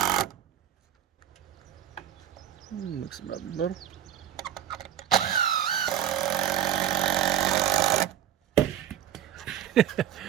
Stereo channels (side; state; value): left; quieter; 10.5 dB